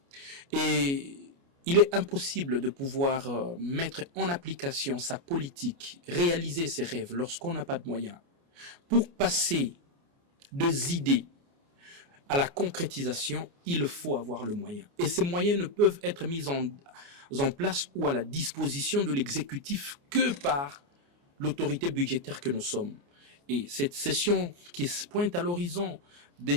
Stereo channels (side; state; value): left; late; 29 ms